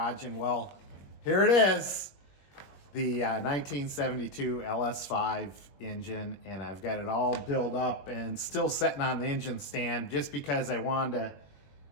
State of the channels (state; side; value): late; right; 21 ms